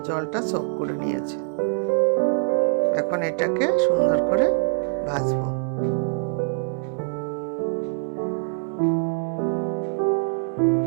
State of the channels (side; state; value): left; silent; digital silence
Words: জলটা সোক করে নিয়েছে। এখন এটাকে সুন্দর করে ভাজবো।